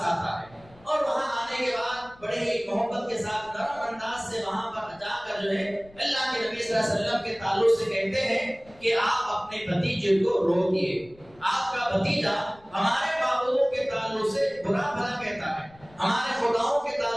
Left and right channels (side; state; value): left; noise; rumble, 26 dB below the sound